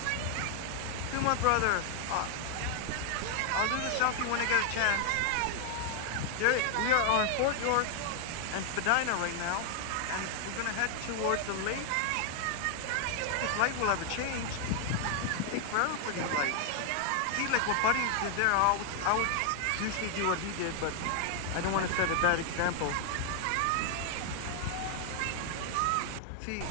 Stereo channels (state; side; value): different; both; correlation 0.00